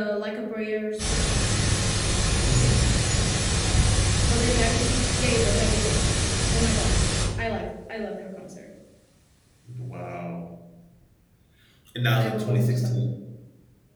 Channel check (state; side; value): identical; both; correlation 1.00